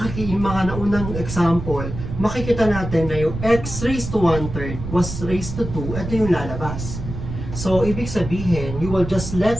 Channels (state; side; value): noise; right; rumble, 7 dB below the sound